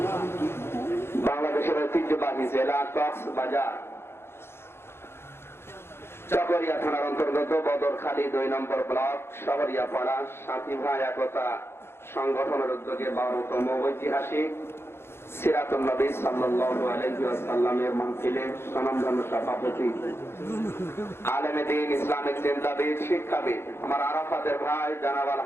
বাংলাদেশের ঐতিহ্যবাহী জেলা কক্সবাজার চকরিয়া থানার অন্তর্গত বদরখালী ২ নম্বর ব্লক শহরিয়া পাড়া সাথী ভাই একতা সংগঠনের উদ্যোগে ১২তম ঐতিহাসিক সিরাতুন নবী সাল্লাল্লাহু আলাইহি ওয়াসাল্লামের মাহফিলে স্বনামধন্য সভাপতি আলেমে দ্বীন, ইসলামিক চিন্তাবিদ, শিক্ষাবিদ আমার আরাফাতের ভাই জনাব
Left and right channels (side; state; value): right; late; 0.12 ms